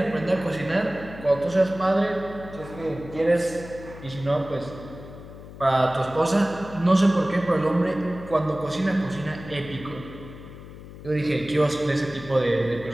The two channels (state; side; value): noise; left; hum, 15 dB below the sound